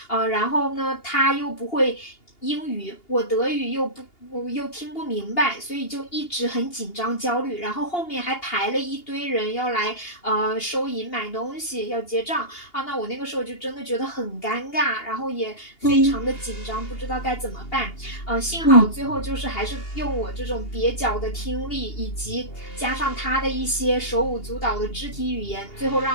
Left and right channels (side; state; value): right; late; 2.8 ms